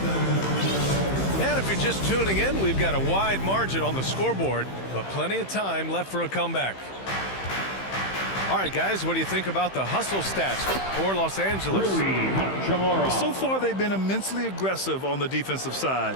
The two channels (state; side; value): late; right; 15 ms